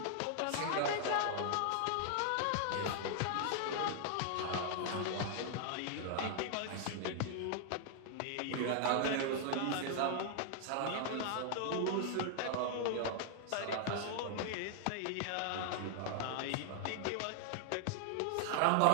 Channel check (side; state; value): both; different; correlation 0.00